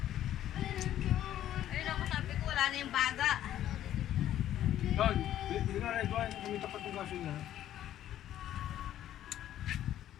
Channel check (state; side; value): quieter; right; 12.0 dB